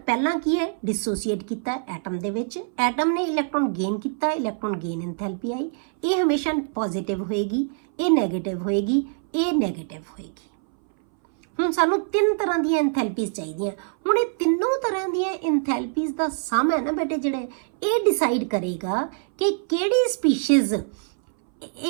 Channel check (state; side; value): silent; left; 61 dB below the other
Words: ਪਹਿਲਾਂ ਕੀ ਹੈ, ਡਿਸੋਸੀਏਟ ਕੀਤਾ ਐਟਮ ਦੇ ਵਿੱਚ, ਐਟਮ ਨੇ ਇਲੈਕਟ੍ਰੋਨ ਗੇਨ ਕੀਤਾ, ਇਲੈਕਟ੍ਰੋਨ ਗੇਨ ਐਂਥੈਲਪੀ ਆਈ। ਇਹ ਹਮੇਸ਼ਾ ਪੋਜ਼ਿਟਿਵ ਹੋਏਗੀ, ਇਹ ਨੈਗੇਟਿਵ ਹੋਏਗੀ, ਇਹ ਨੈਗੇਟਿਵ ਹੋਏਗੀ। ਹੁਣ ਸਾਨੂੰ ਤਿੰਨ ਤਰ੍ਹਾਂ ਦੀਆਂ ਐਂਥੈਲਪੀਜ਼ ਚਾਹੀਦੀਆਂ। ਹੁਣ ਇਹ ਤਿੰਨੋਂ ਤਰ੍ਹਾਂ ਦੀਆਂ ਐਂਥੈਲਪੀਜ਼ ਦਾ ਸਮ ਹੈ ਨਾ ਬੇਟੇ, ਜਿਹੜੇ ਇਹ ਡਿਸਾਈਡ ਕਰੇਗਾ ਕਿ ਕਿਹੜੀ ਸਪੀਸ਼ੀਜ਼